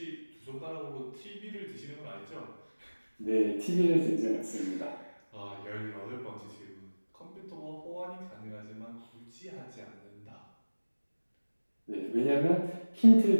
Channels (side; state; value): both; inverted; correlation -1.00